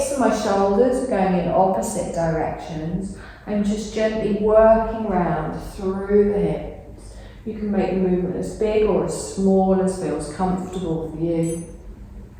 and my shoulders are going in opposite directions. I'm just gently working round through the hips. You can make the movement as big or as small as feels comfortable for you.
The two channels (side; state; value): both; identical; correlation 1.00